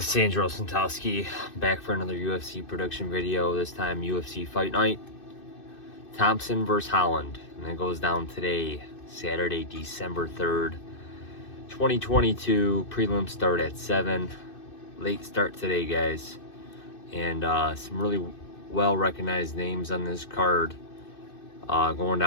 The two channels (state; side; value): late; right; 2.6 ms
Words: It's Anjos back for another UFC production video, this time UFC Fight Night. Thompson versus Holland. And it goes down today, Saturday, December 3rd, 2022. Prelim start at 7. Late start today, guys. And some really well-recognized names on this card. Going